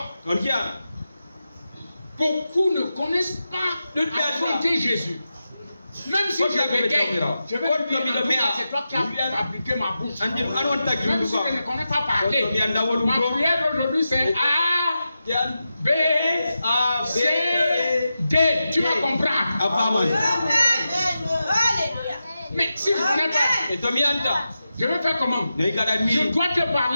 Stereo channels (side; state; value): both; inverted; correlation -0.91